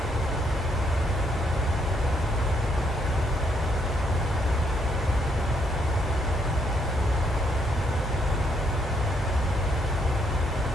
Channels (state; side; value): normal; both; correlation 0.73